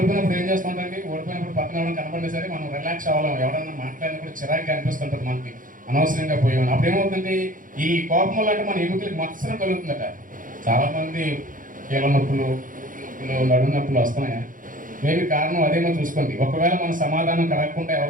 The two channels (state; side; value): late; left; 0.39 ms